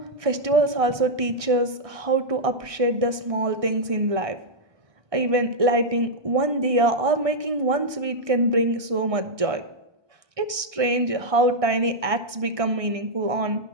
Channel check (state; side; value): late; left; 1.6 ms